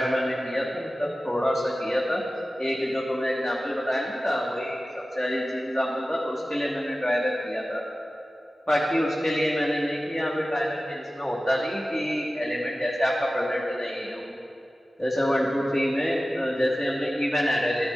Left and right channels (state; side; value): normal; both; correlation 0.96